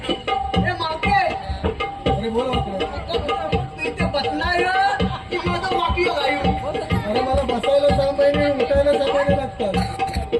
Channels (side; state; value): both; identical; correlation 1.00